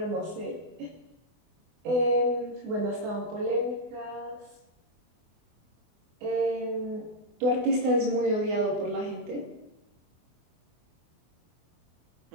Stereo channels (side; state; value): left; late; 24 ms